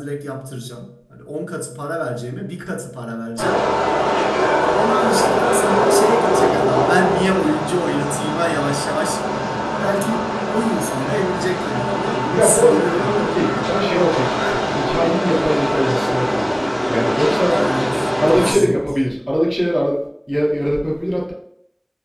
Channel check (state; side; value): identical; both; correlation 1.00